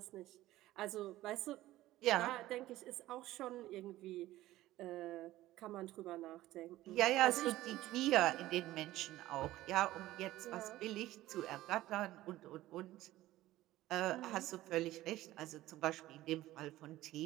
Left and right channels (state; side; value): quieter; left; 15.9 dB